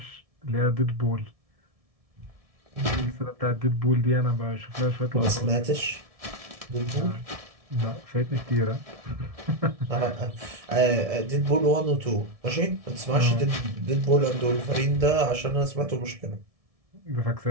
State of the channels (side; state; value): left; late; 1.7 ms